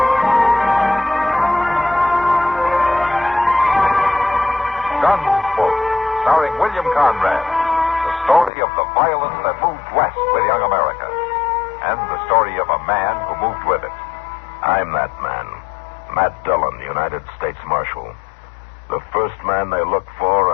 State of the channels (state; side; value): drops out; right; at 8.5 s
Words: Gunsmoke, starring William Conrad. The story of the violence that moved west with young America. And the story of a man who moved with it. I'm that man. Matt Dillon, United States Marshal. The first man they look for